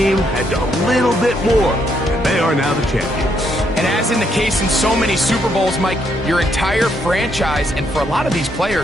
had a little bit more, and they are now the champions. And as in the case in so many Super Bowls, Mike, your entire franchise, and for a lot of these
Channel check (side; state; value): both; normal; correlation 0.74